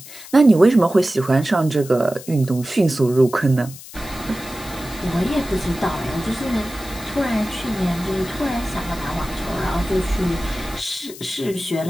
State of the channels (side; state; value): left; noise; hiss, 16 dB below the sound